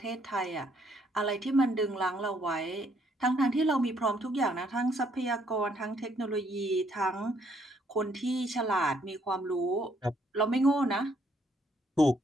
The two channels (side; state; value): both; normal; correlation 0.69